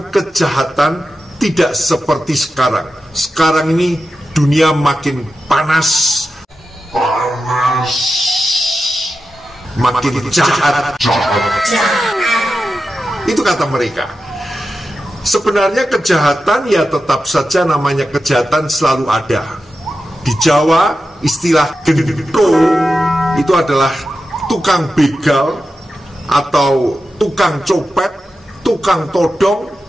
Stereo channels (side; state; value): both; normal; correlation 0.91